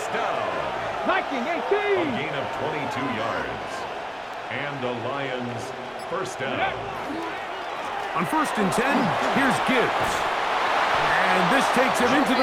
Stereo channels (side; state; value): both; identical; correlation 1.00